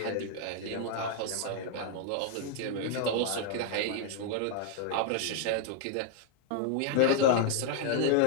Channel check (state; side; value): different; both; correlation 0.00